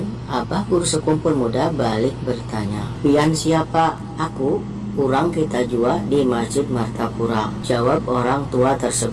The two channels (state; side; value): identical; both; correlation 1.00